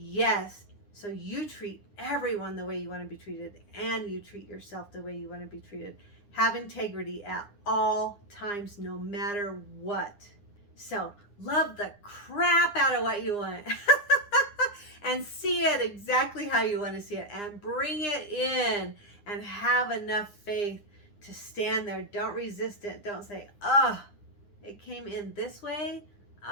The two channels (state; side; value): late; right; 9.8 ms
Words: So you treat everyone the way you want to be treated, and you treat yourself the way you want to be treated. Have integrity at all times, no matter what. So love the crap out of what you want and see it exactly how you want to see it, and bring it in, and have enough faith to stand there. Don't resist it. Don't say, oh, it came in this way.